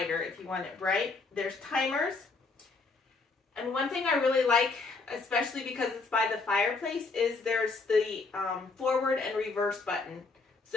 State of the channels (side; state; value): right; quieter; 4.0 dB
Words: if you want it bright. There's timers. And one thing I really like, especially because it's by the fireplace, is there's the forward and reverse button.